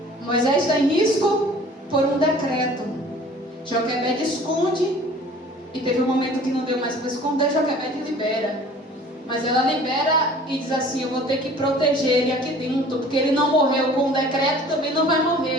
Moisés está em risco por um decreto. Joquebede esconde, e teve um momento que não deu mais para esconder. Joquebede libera, mas ela libera e diz assim: eu vou ter que proteger ele aqui dentro, porque ele não morreu com o decreto, também não vai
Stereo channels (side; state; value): both; normal; correlation 0.48